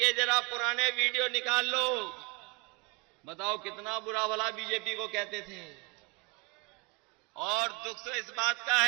जरा पुराने वीडियो निकाल लो, बताओ कितना बुरा भला बीजेपी को कहते थे। और दुख तो इस बात का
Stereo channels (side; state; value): left; quieter; 28.0 dB